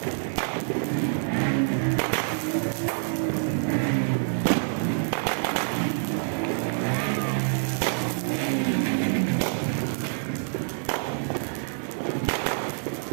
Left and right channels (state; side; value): silent; left; digital silence